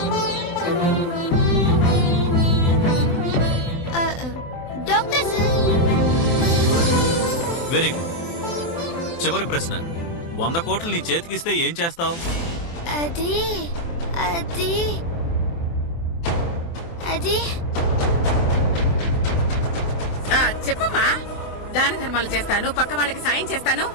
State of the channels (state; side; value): late; right; 24 ms